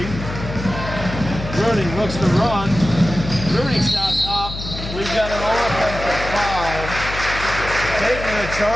Ruding looks to run. Ruding shots up. We've got an offensive foul. Taking a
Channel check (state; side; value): noise; left; hum, 8 dB below the sound